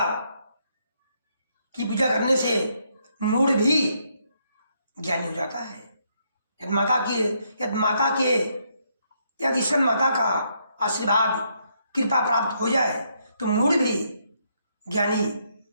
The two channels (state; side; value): inverted; both; correlation -0.75